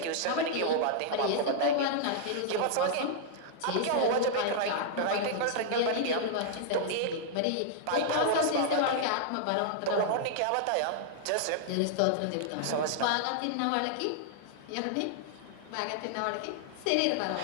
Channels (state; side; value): different; both; correlation -0.01